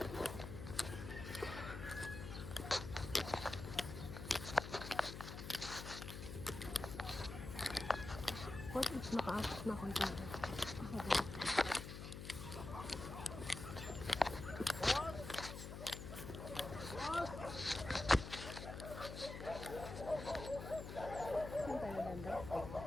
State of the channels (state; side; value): noise; left; hum, 8 dB below the sound